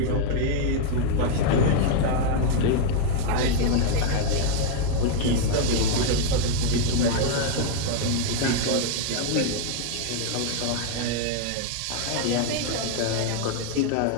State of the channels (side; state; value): both; different; correlation 0.00